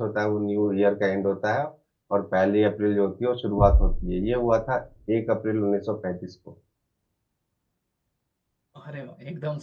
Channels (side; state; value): both; identical; correlation 1.00